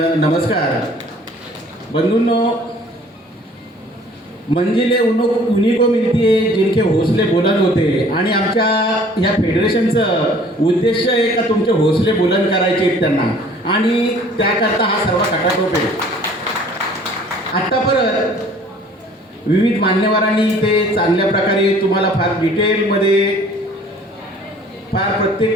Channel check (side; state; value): both; normal; correlation 0.53